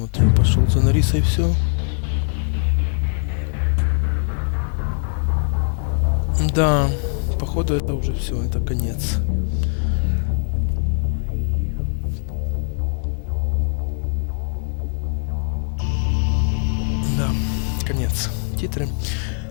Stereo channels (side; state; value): right; silent; 61 dB below the other